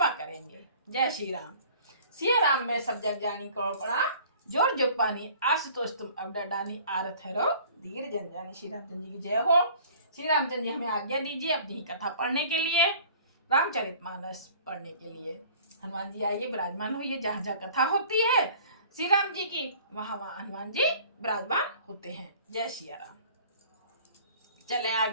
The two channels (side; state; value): both; inverted; correlation -0.49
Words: करेंगे। जय श्री राम। सिया राम में सब जग जानी करो प्रणाम, जोर जोग पानी आशुतोष तुम अब डानी आरत है धीर जन जानी। श्री रामचंद्र जी की जय हो। श्री रामचंद्र जी हमें आज्ञा दीजिए अपनी ही कथा पढ़ने के लिए, रामचरितमानस पढ़ने के लिए। हनुमान जी आइए, विराजमान होइए। जहाँ जहाँ कथा होती है श्री राम जी की, वहां वहां हनुमान जी विराजमान होते हैं। जय श्री राम। चले